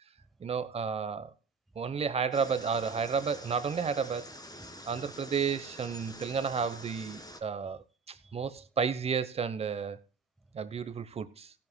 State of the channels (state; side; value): quieter; left; 5.7 dB